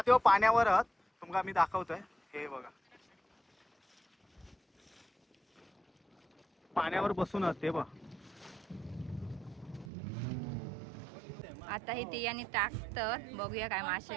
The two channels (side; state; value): left; drops out; at 9.9 s